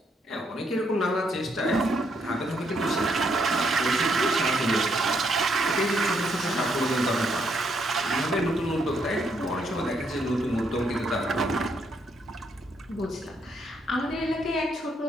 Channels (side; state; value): both; normal; correlation 0.74